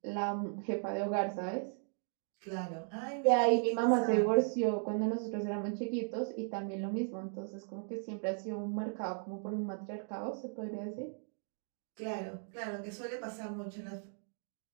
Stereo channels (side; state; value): left; silent; 53 dB below the other